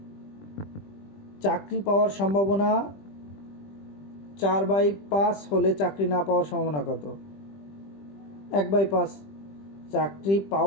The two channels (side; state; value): right; late; 20 ms